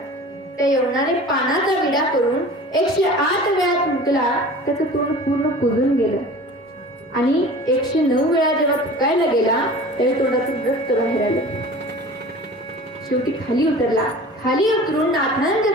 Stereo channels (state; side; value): normal; both; correlation 0.41